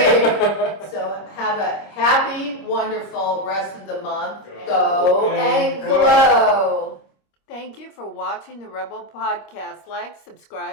So have a happy, wonderful rest of the month. Go and glow. Thank you for watching the RHEB3L Podcast. Like,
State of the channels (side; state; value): right; late; 26 ms